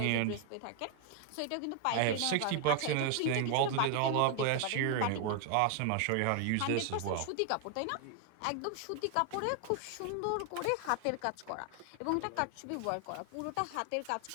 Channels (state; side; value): different; both; correlation 0.00